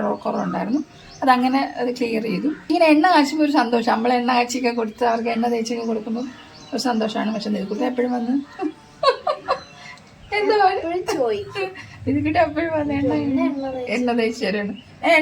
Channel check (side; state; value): both; identical; correlation 1.00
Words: കുറവുണ്ടായിരുന്നു. അതങ്ങനെ അത് ക്ലിയർ ചെയ്തു. ഇങ്ങനെ എണ്ണ കാച്ചുമ്പോൾ ഒരു സന്തോഷം. നമ്മൾ എണ്ണ കാച്ചിയൊക്കെ കൊടുത്ത് അവർക്ക് എണ്ണ തേച്ചൊക്കെ കൊടുക്കുമ്പോൾ ഒരു സന്തോഷമാണ്. പക്ഷെ നിധിക്കുട്ടി എപ്പോഴും വന്ന് എന്താ നിധിക്കുട്ടി എപ്പോഴും വന്ന് എണ്ണ തേച്ച് തരാണ്.